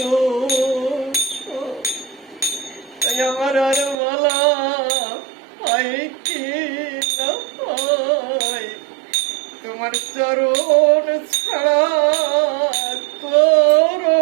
সব। তাই আমার আর বলা হয় কি না হয় তোমার চরণ ছাড়া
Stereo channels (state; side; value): drops out; left; at 4.0 s